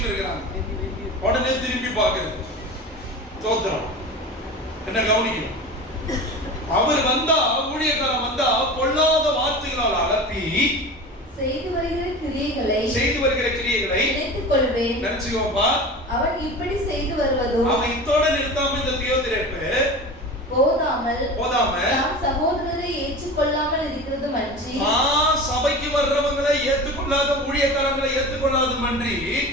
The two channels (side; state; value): both; normal; correlation 0.33